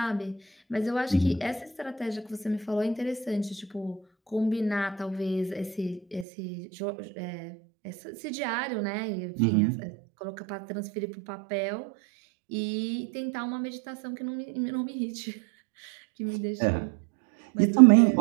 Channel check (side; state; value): left; drops out; at 6.2 s